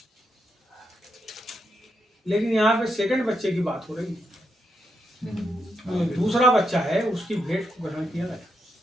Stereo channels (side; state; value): both; normal; correlation 0.82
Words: लेकिन यहाँ पे सेकंड बच्चे की बात हो रही है। जो दूसरा बच्चा है उसकी भेंट को ग्रहण किया गया।